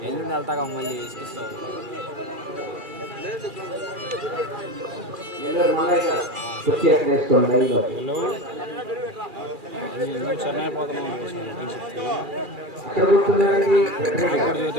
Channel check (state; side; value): late; left; 2.4 ms